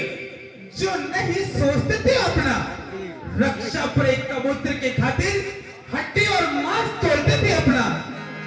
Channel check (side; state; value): both; identical; correlation 1.00